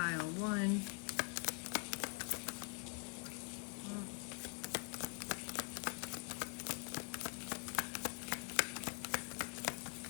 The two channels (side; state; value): right; quieter; 34.4 dB